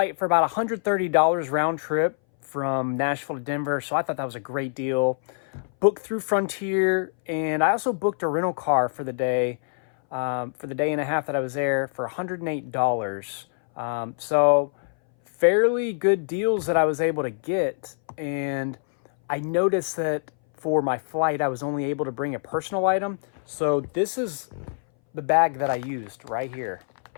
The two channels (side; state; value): right; silent; 60 dB below the other